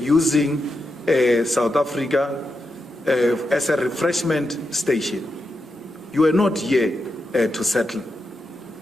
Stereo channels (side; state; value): both; normal; correlation 0.86